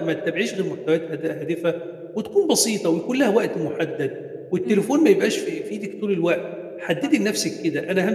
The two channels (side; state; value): both; identical; correlation 1.00